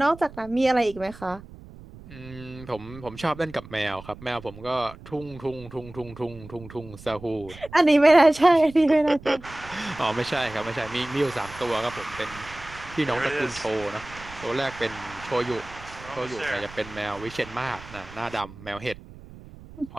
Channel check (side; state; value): right; noise; rumble, 17 dB below the sound